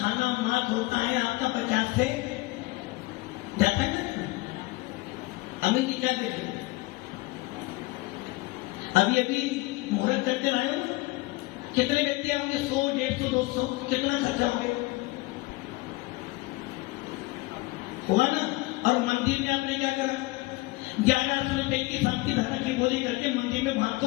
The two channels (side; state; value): right; quieter; 21.9 dB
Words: मात होता है आपका 50 से जाता है ना। अमित जी क्या कहते? अभी अभी मुहूर्त करते आए हो, कितने व्यक्ति आओगे? 100, 150, 200, कितना खर्चा हो गया होगा ना? और मंदिर में आपने क्या करा? 1100 रुपए की शांति धारा की बोली करके मंदिर में